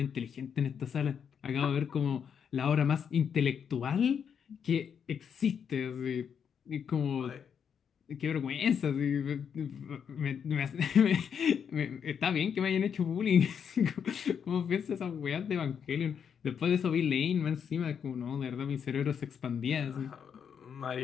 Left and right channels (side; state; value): right; quieter; 7.5 dB